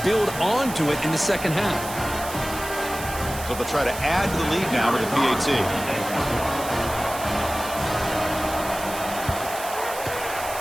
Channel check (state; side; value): noise; right; hiss, 11 dB below the sound